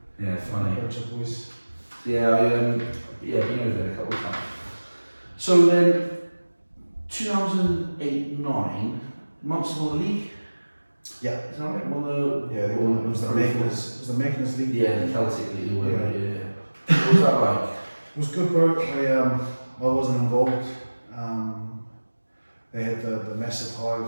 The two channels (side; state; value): both; inverted; correlation -1.00